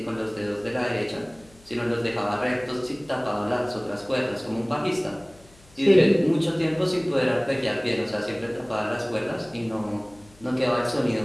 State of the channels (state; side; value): noise; left; hum, 27 dB below the sound